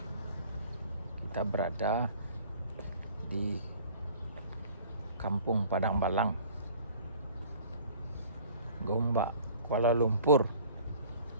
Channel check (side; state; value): both; inverted; correlation -0.50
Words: kita berada di Kampung Padang Balang, Gombak, Kuala Lumpur,